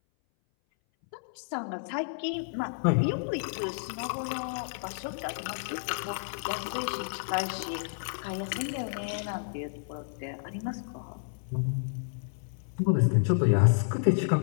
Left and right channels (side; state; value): right; silent; 57 dB below the other